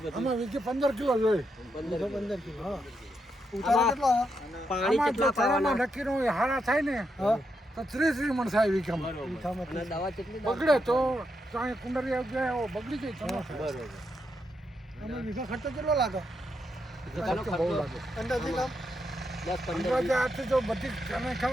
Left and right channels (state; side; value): normal; both; correlation 0.82